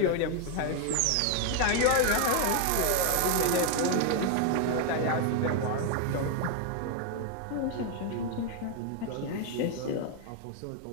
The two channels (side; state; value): both; different; correlation 0.01